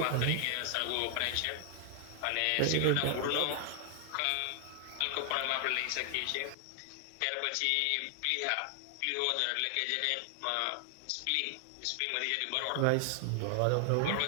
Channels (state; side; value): different; both; correlation 0.00